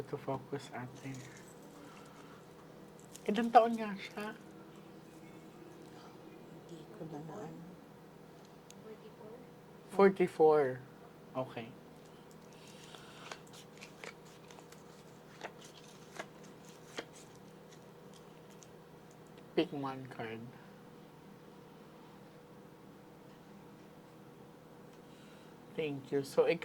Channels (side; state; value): both; identical; correlation 1.00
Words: to focus, ate. Ilang taon nga siya? Hindi ko na ano. 44. Okay. Pick one card. Thank you. So,